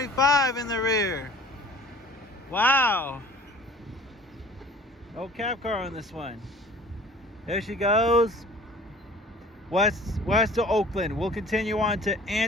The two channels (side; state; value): both; normal; correlation 0.47